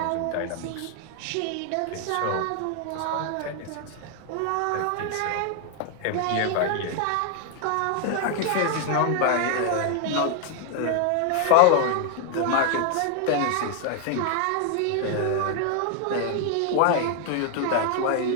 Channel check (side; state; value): both; different; correlation 0.00